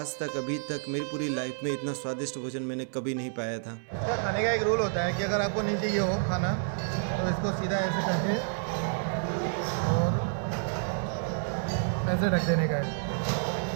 तक अभी तक मेरी पूरी लाइफ में इतना स्वादिष्ट भोजन मैंने कभी नहीं पाया था। इसका खाने का एक रूल होता है कि अगर आपको नहीं चाहिए हो खाना तो इसको सीधा ऐसे करके और ऐसे ढक देने का है।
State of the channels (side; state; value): left; silent; digital silence